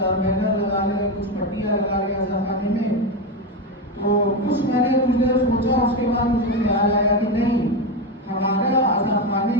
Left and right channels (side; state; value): both; normal; correlation 0.14